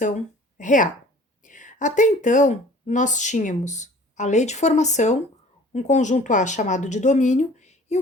real. Até então, nós tínhamos a lei de formação, um conjunto A chamado de domínio e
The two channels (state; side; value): normal; both; correlation 0.48